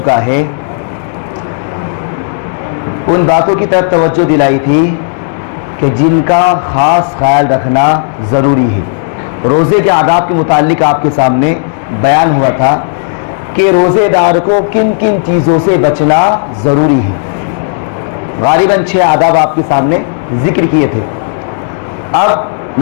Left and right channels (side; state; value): right; silent; digital silence